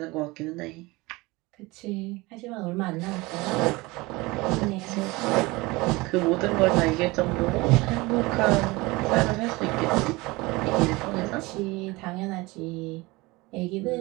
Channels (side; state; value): left; quieter; 22.6 dB